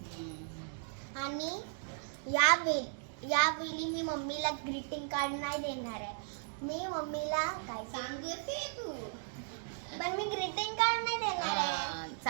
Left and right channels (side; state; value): left; silent; digital silence